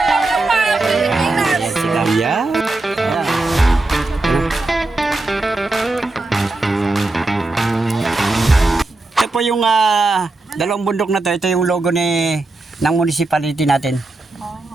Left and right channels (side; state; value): left; quieter; 3.0 dB